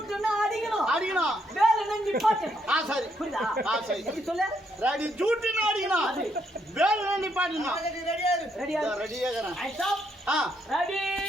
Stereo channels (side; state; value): both; normal; correlation 0.75